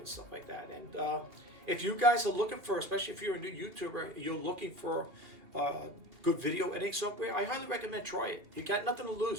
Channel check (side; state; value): left; late; 2.6 ms